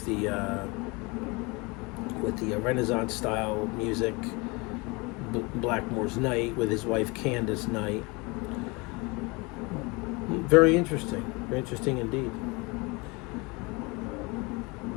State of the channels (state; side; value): quieter; right; 26.8 dB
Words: with the Renaissance style music, Blackmore's Night, with his wife Candace Knight. Very interesting indeed.